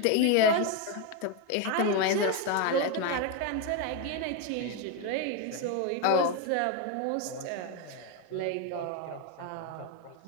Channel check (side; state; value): both; different; correlation 0.02